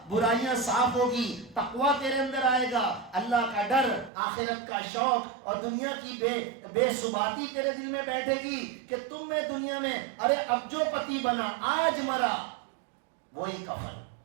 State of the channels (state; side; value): drops out; left; at 4.1 s